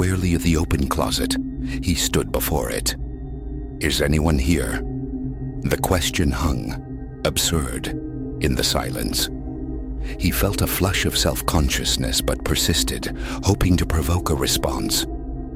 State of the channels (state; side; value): identical; both; correlation 1.00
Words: at the open closet, he stood before it. "Is anyone here?" The question hung, absurd, in the silence. He felt a flush of self-consciousness but persisted, hoping to provoke a response.